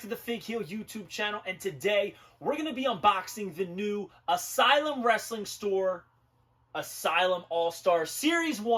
the Fig Heel YouTube channel, and today we're going to be unboxing the new Asylum Wrestling Store Asylum All-Star Series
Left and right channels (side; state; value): both; identical; correlation 1.00